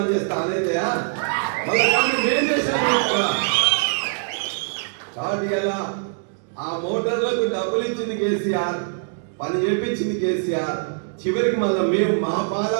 చేస్తే ఆనవుతాయా? కాబట్టి కదా ఆ మోటార్లకు డబ్బులు ఇచ్చింది కేసీఆర్, పని చేపించింది కేసీఆర్. చివరికి మళ్ళీ మేము మా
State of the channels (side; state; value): left; silent; digital silence